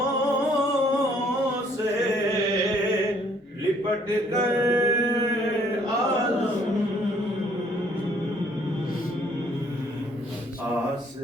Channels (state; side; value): normal; both; correlation 0.62